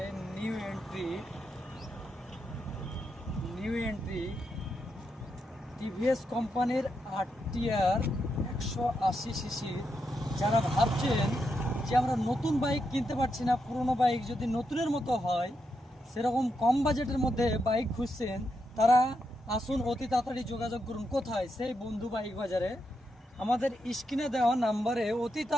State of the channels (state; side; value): normal; both; correlation 0.83